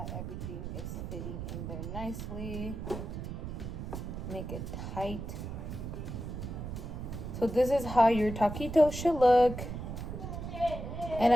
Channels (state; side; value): noise; right; rumble, 6 dB below the sound